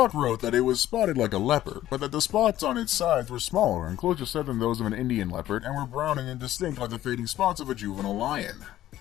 wrote that it was spotted like a leopard, but that the spots on its sides were smaller and closer set than those of an Indian leopard and were brown and indistinct like the fading spots of a juvenile lion.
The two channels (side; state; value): right; quieter; 13.5 dB